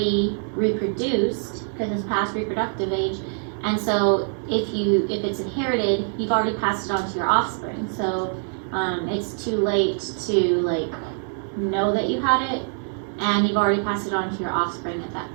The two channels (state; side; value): silent; left; 59 dB below the other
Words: reproduced because it's past reproductive age, and so if it's inherited, you've already passed it on to your offspring. So it's too late to like know that you had it and you've already passed it on to your offspring at that